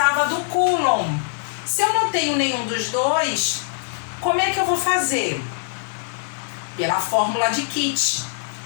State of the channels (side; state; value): right; silent; 64 dB below the other